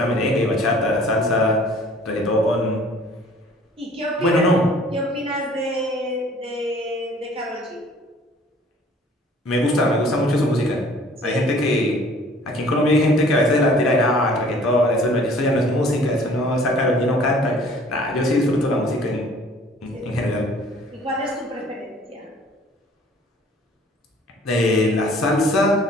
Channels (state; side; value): normal; both; correlation 0.53